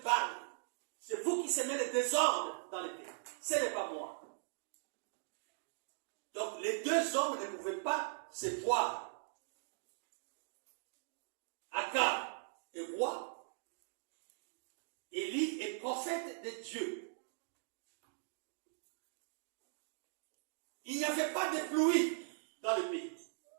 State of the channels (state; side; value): silent; left; digital silence